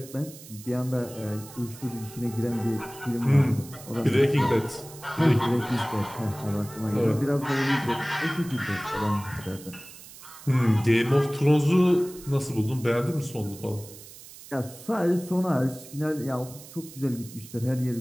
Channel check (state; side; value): noise; right; hiss, 17 dB below the sound